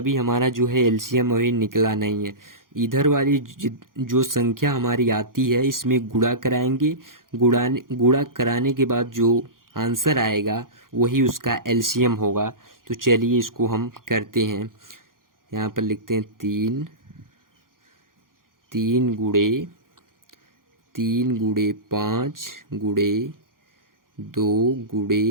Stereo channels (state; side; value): late; left; 0.91 ms